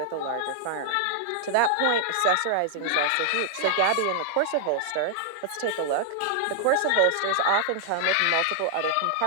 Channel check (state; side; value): different; both; correlation -0.01